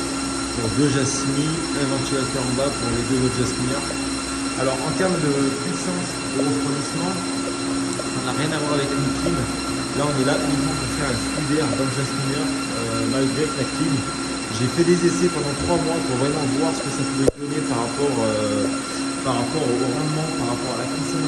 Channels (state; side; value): identical; both; correlation 1.00